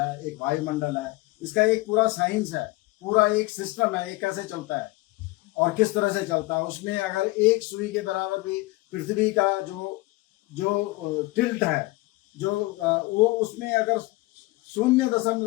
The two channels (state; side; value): quieter; right; 21.7 dB